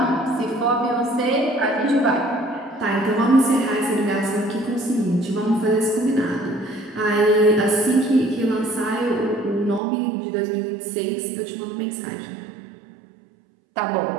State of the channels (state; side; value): drops out; left; at 9.8 s